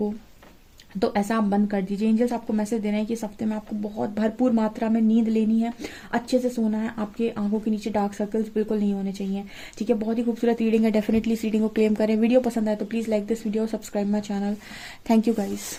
तो ऐसा आप बंद कर दीजिए। एंजल्स आपको मैसेज दे रहे हैं कि इस हफ्ते में आपको बहुत भरपूर मात्रा में नींद लेनी है, अच्छे से सोना है। आपके आंखों के नीचे डार्क सर्कल्स बिल्कुल नहीं होने चाहिए। ठीक है, बहुत ही खूबसूरत रीडिंग है। डेफिनेटली इस रीडिंग को क्लेम करें। वीडियो पसंद आए तो please like this video, subscribe my channel. Thank you guys.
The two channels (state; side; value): identical; both; correlation 1.00